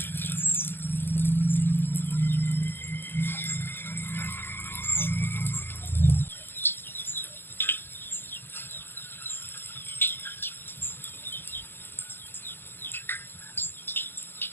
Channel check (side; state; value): right; late; 0.10 ms